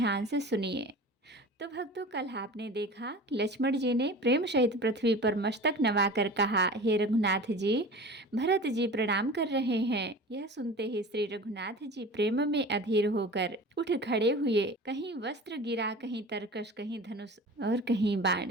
से सुनिए। तो भक्तों, कल आपने देखा कि लक्ष्मण जी ने प्रेम सहित पृथ्वी पर मस्तक नवाकर कहा, हे रघुनाथ जी, भरत जी प्रणाम कर रहे हैं। यह सुनते ही श्री रघुनाथ जी प्रेम में अधीर होकर उठ खड़े हुए। कहीं वस्त्र गिरा, कहीं तरकश, कहीं धनुष और कहीं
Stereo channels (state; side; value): normal; both; correlation 0.37